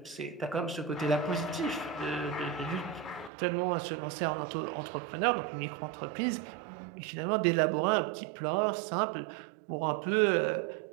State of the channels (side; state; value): left; drops out; at 3.3 s